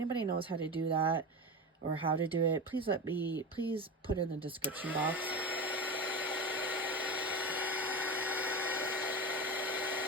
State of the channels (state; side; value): normal; both; correlation 0.24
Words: knows how to do that or how to do it, please put in the description box.